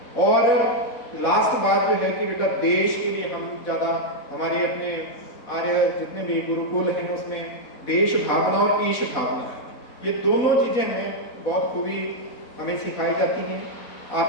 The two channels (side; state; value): right; late; 4.1 ms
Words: और लास्ट बात जो है कि बेटा देश के लिए हम ज़्यादा हमारे अपने आर्य जितने भी गुरुकुल हैं उसमें देश भावना और ईश भावना, ये दोनों चीज़ें हमें बहुत खूबी हमें सिखाई जाती हैं.